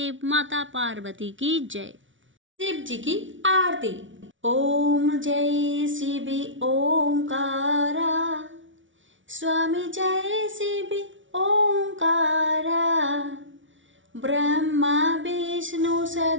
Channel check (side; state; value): left; late; 0.56 ms